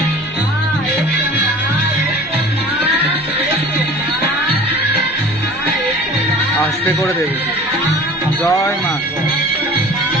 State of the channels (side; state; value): both; normal; correlation 0.43